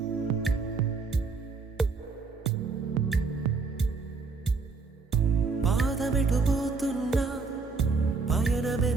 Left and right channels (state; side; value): quieter; left; 4.4 dB